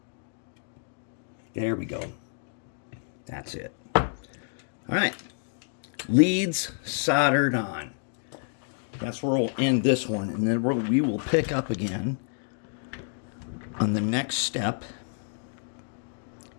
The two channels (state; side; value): silent; right; digital silence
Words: There we go. That's it. All right. Leads soldered on. That's where we'll end this one, and then we will pick up again on the next step,